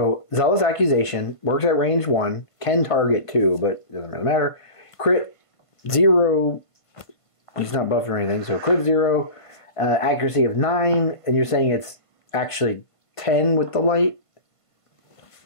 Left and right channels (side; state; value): right; late; 1.5 ms